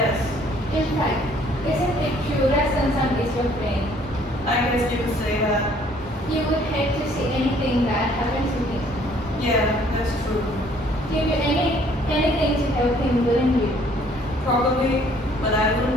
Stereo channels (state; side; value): normal; both; correlation 0.60